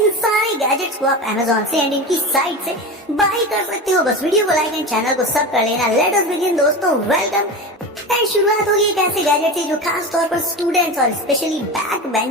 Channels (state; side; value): normal; both; correlation 0.26